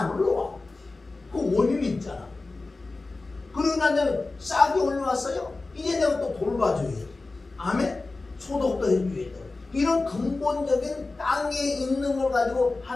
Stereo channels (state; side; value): quieter; right; 3.4 dB